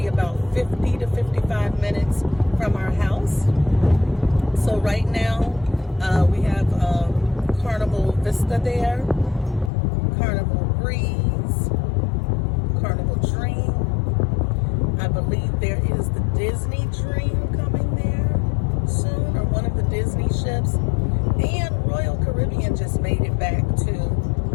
about 50 to 55 minutes from our house. So right now we have Carnival Vista there, Carnival Breeze, Carnival Dream. I believe there is the Disney Dream coming there soon, or one of the Disney ships. And Royal Caribbean just made it back to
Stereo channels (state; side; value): drops out; right; at 9.7 s